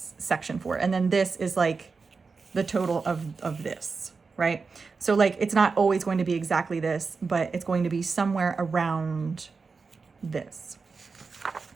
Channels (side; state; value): left; quieter; 4.7 dB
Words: section for. And then this is like the total of this, right? So like, it's not always going to be exactly this, but it's going to be somewhere around this.